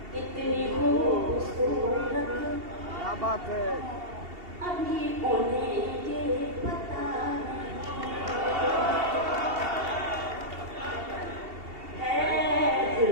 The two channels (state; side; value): late; left; 2.7 ms